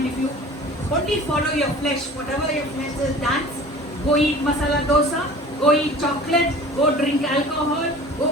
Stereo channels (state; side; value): normal; both; correlation 0.43